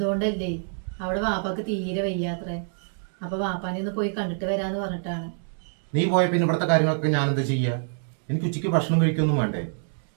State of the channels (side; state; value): left; silent; 61 dB below the other